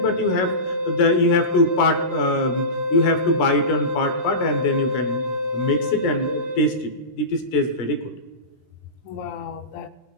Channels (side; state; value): right; late; 17 ms